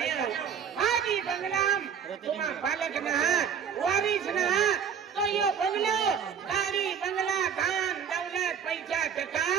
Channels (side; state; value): left; quieter; 7.6 dB